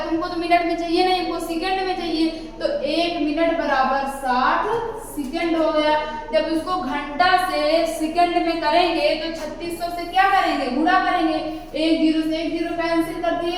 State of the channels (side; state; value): both; identical; correlation 1.00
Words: तो मिनट में चाहिए नहीं, हमको सेकेंड में चाहिए। तो 1 मिनट बराबर 60 सेकेंड हो गया। जब उसको घंटा से सेकेंड में करेंगे तो 3600 से क्या करेंगे गुणा करेंगे। 1 0 से 1 0 कैंसिल कर